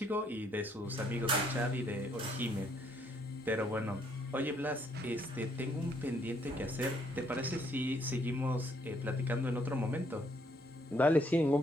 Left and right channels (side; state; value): both; normal; correlation 0.69